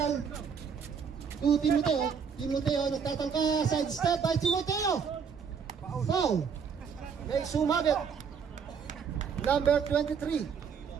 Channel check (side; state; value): left; quieter; 6.5 dB